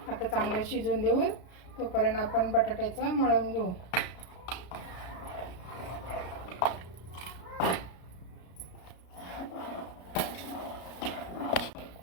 आता चांगलं शिजून देऊ. तोपर्यंत आपण बटाट्याचं मळून घेऊ.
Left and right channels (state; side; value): late; right; 33 ms